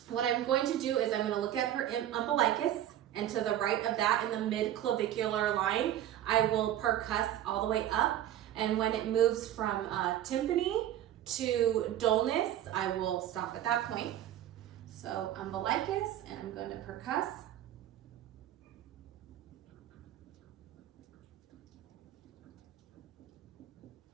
What I'm going to do is I'm going to look at her umbilicus, and to the right of that in the mid-clavicular line, I will percuss all the way up. And when it moves from tympany to dullness, I will stop at that point. So umbilicus, and I'm going to percuss.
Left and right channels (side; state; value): left; quieter; 12.0 dB